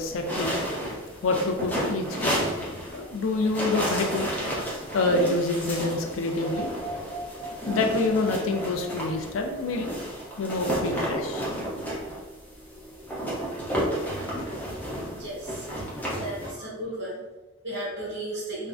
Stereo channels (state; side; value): normal; both; correlation 0.22